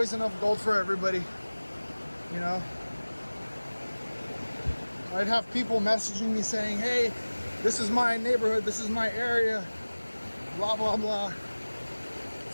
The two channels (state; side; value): inverted; both; correlation -1.00